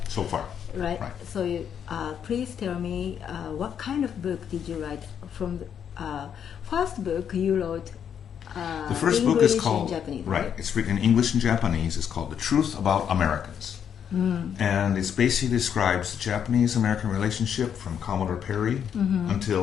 So far. Right. So please tell me what kind of book did you write? From the first book you wrote. The first English book is called and Japanese, right. It's written in English and Japanese. It's called "The Truth About Americans," and it basically describes the Japanese-American relationship from Commodore Perry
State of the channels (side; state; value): right; quieter; 8.3 dB